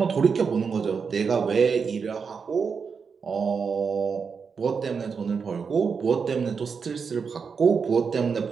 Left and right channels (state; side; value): quieter; left; 5.7 dB